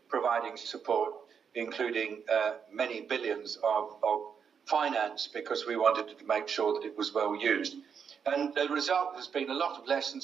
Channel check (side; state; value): left; quieter; 6.9 dB